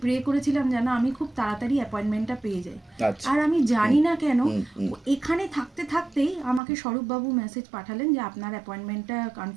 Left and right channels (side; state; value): left; drops out; at 6.6 s